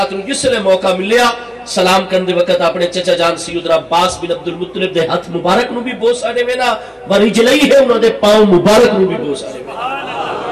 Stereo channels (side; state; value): both; identical; correlation 1.00